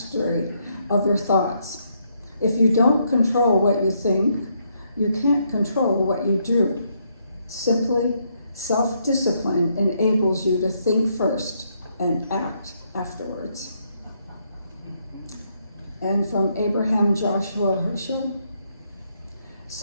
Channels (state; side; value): inverted; both; correlation -0.75